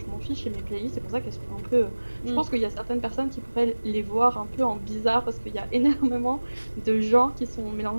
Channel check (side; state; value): both; inverted; correlation -1.00